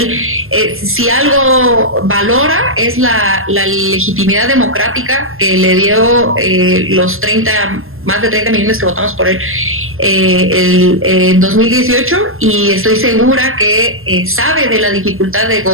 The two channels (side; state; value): left; late; 0.61 ms